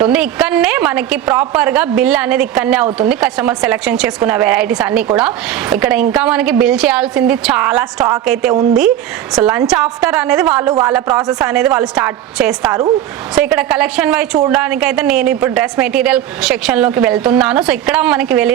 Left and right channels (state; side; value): quieter; left; 11.5 dB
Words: ఇక్కడనే మనకి ప్రాపర్ గా బిల్ అనేది ఇక్కడనే అవుతుంది. కస్టమర్ సెలెక్షన్ చేసుకున్న వెరైటీస్ అన్ని కూడా ఇక్కడ. ఇంకా మనకి బిల్ చేయాల్సింది చాలా స్టాక్ అయితే ఉంది. సో లంచ్ ఆఫ్టర్ అనేది వాళ్ళ ప్రాసెస్ అనేది వాళ్ళు స్టార్ట్ చేస్తారు. సో ఇక్కడ కలెక్షన్ వైజ్ చూడడానికి అయితే నేను ఇప్పుడు డ్రెస్ మెటీరియల్ సెక్షన్ లోకి వెళ్తున్నాను. సో ఇక్కడ మనకి